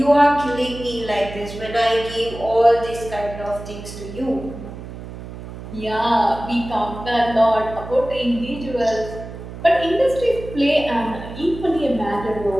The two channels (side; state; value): right; noise; hum, 12 dB below the sound